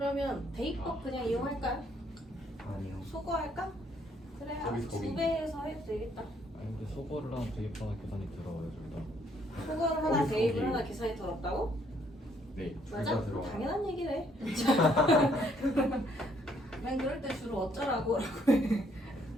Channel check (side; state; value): both; normal; correlation 0.68